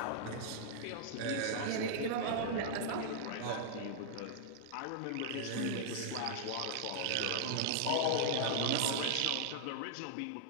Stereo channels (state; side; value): different; both; correlation -0.01